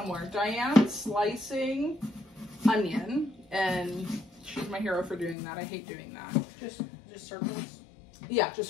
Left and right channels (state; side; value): drops out; right; at 5.4 s